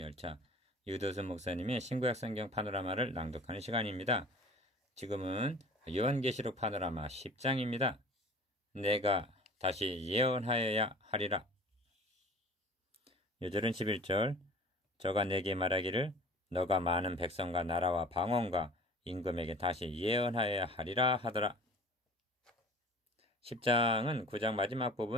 유도순 목사님의 신구약 성경 파노라마를 낭독하는 시간입니다. 지금은 요한계시록 파노라마 10장입니다. 내가 다시 예언하여야 하리라. 요절은 11절 저가 내게 말하기를 너가 많은 백성과 나라와 방언과 임금에게 다시 예언하여야 하리라 하더라. 10장은 9장 마지막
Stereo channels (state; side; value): normal; both; correlation 0.44